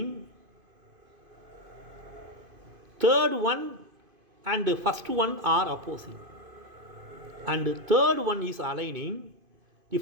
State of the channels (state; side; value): late; left; 2.5 ms